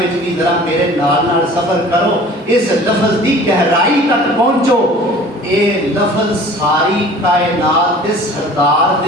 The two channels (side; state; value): both; normal; correlation 0.46